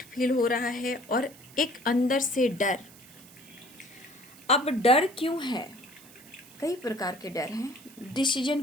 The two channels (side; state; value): right; noise; hiss, 22 dB below the sound